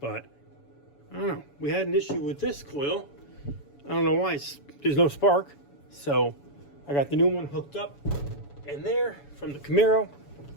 I don't know. We had an issue with this coil. I don't know why, there's no spark. So I got the new one hooked up in there from the Camaro.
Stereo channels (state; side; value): late; right; 7.0 ms